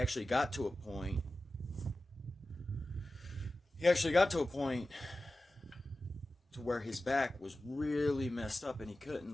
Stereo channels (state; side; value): normal; both; correlation 0.94